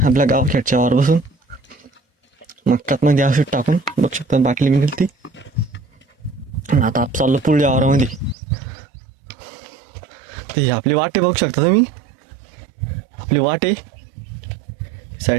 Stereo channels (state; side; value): drops out; left; at 8.3 s